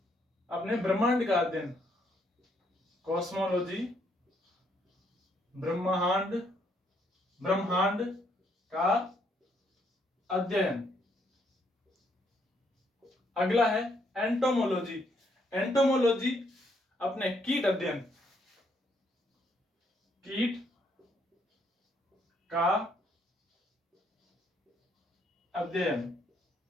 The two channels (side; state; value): both; normal; correlation 0.72